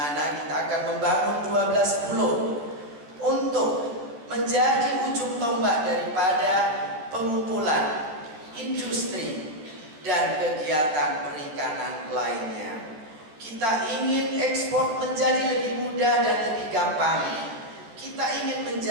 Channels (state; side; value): late; left; 13 ms